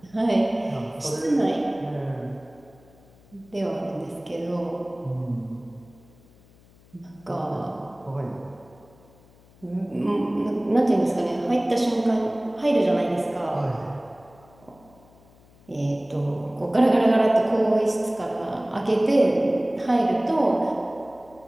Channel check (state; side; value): noise; left; hum, 28 dB below the sound